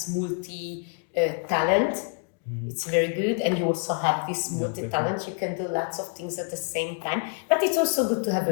multi-talent. It's very good, and you also have this multi-talent. You can do lots of things at the same time, but it's also good to have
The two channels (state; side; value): quieter; right; 39.3 dB